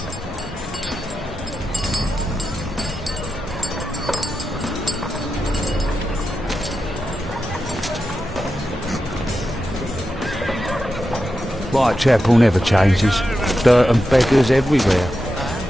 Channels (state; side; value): normal; both; correlation 0.89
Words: Whitechapel never changes. Dirt and beggars everywhere.